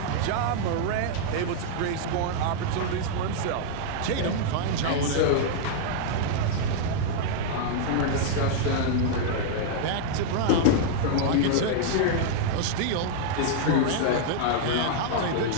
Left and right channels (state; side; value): different; both; correlation -0.01